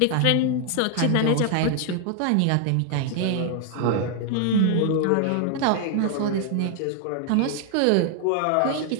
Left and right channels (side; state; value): both; different; correlation 0.00